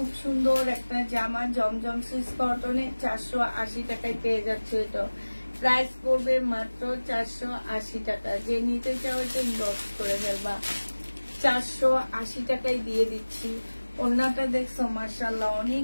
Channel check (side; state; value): both; inverted; correlation -1.00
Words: সুন্দর একটা জামা, জমজম সুইস কটনে 480 টাকায় পেয়ে যাচ্ছে। এটা প্রাইস পড়বে মাত্র 480 টাকা। যে নিতে চাও এটা ইনবক্স করে ফেলবা। 480 টাকায় দিয়ে দিচ্ছি। ওড়নাটা দেখছো মাশাআল্লাহ